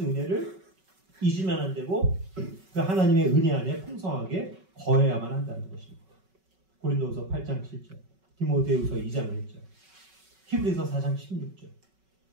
은혜를 잊으면 안 되고 그 하나님의 은혜 안에 풍성하게 거해야만 한다는 것입니다. 고린도후서 8장 7절, 디모데후서 2장 1절, 히브리서 4장 16절.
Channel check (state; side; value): late; left; 5.3 ms